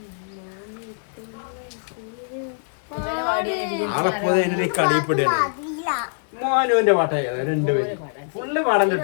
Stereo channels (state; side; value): silent; right; digital silence